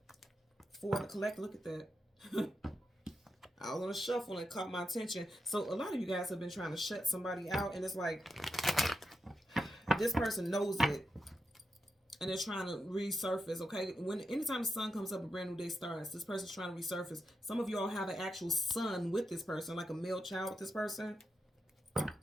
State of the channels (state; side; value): normal; both; correlation 0.86